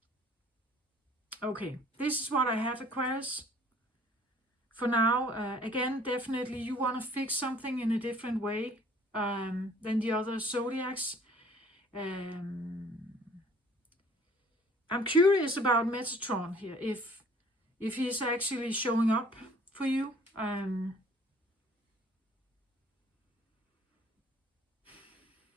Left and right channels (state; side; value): normal; both; correlation 0.55